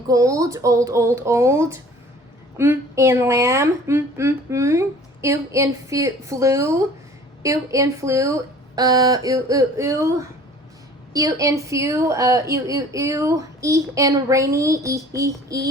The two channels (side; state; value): both; normal; correlation 0.48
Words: gold, old, in lamb, ew in flu, ew in few, e in rainy,